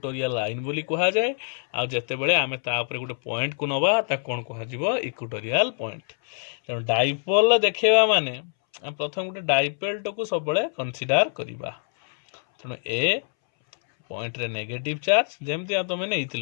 लाइन बोली कहा जाए। आ जते बेले आमे ता ऊपर गोटे पॉइंट को नबा ता कौन कहा जिवो इक्वेटोरियल पॉइंट। तेणु डाइपोल देखा माने प्रथम गोटे डाइपोल को सब बेले कंसीडर करिबा। तेणु ए पॉइंट रे नेगेटिव चार्ज जेमती तुम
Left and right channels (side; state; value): right; silent; 62 dB below the other